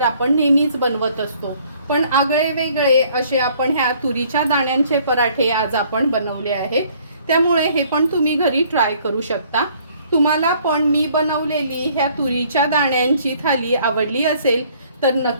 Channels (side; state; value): both; inverted; correlation -0.60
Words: आपण नेहमीच बनवत असतो, पण आगळे वेगळे असे आपण ह्या तुरीच्या दाण्यांचे पराठे आज आपण बनवले आहेत। त्यामुळे हे पण तुम्ही घरी ट्राय करू शकता। तुम्हाला पण मी बनवलेली ह्या तुरीच्या दाण्यांची थाली आवडली असेल तर